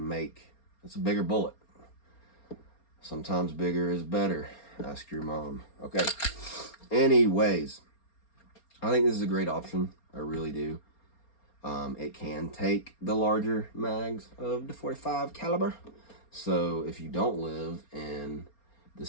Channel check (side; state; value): right; late; 4.3 ms